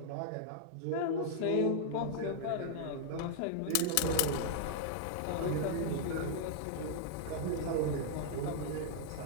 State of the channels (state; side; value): different; both; correlation -0.01